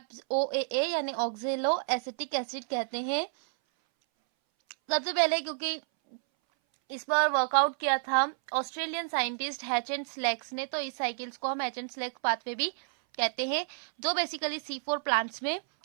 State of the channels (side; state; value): left; silent; 58 dB below the other